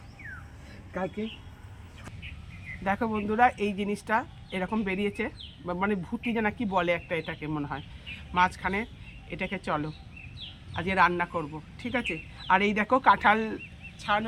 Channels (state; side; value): identical; both; correlation 1.00